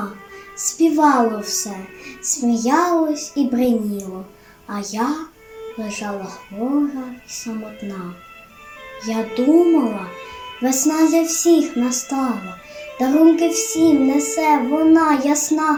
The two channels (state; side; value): identical; both; correlation 1.00